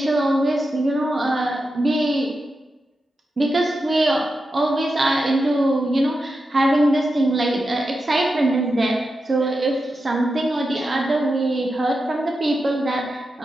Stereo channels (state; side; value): normal; both; correlation 0.89